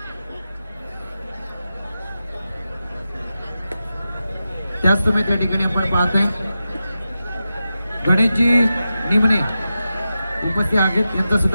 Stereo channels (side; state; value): both; inverted; correlation -0.91